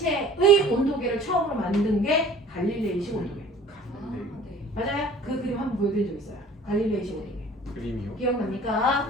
온도계를 처음으로 만든 게 갈릴레이식 온도계. 맞아요? 그 그림 한번 보여드린 적 있어요. 갈릴레이식 온도계. 그림이요? 기억납니까?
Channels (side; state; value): both; normal; correlation 0.48